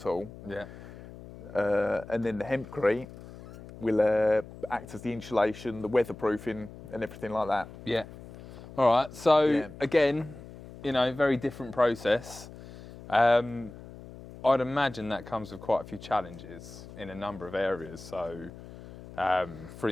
all. Yeah. And then the hempcrete will act as the insulation, the weatherproofing, and everything like that. Yeah. All right. So again, very different process. I'd imagine that comes with quite a few challenges in a number of areas. So, for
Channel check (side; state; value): left; noise; hum, 16 dB below the sound